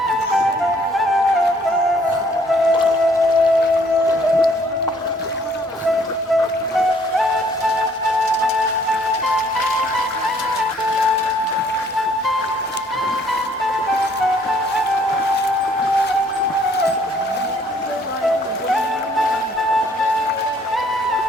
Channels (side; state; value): both; normal; correlation 0.62